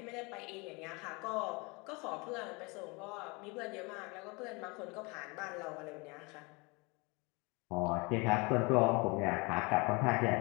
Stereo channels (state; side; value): quieter; right; 28.1 dB